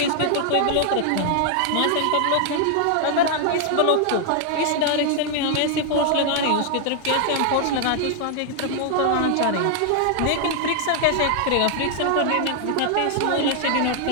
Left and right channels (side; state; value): both; different; correlation 0.00